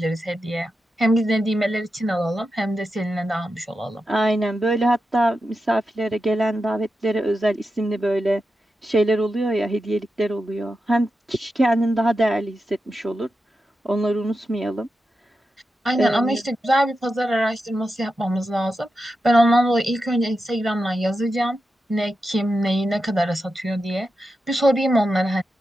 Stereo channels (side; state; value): both; normal; correlation 0.89